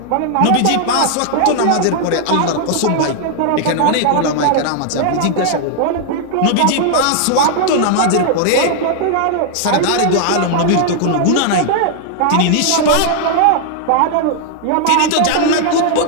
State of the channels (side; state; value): both; different; correlation 0.00